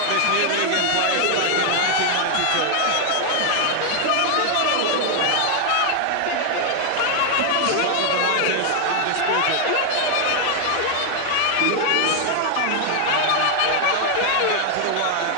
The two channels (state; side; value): different; both; correlation 0.00